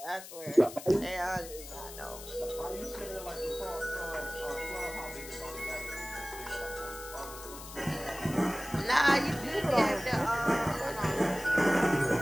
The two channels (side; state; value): left; noise; hiss, 13 dB below the sound